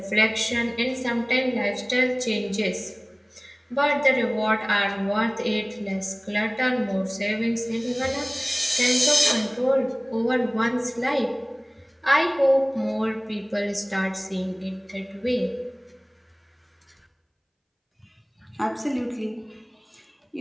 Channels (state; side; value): identical; both; correlation 1.00